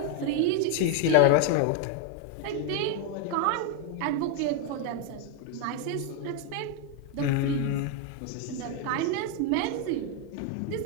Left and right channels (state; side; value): different; both; correlation 0.01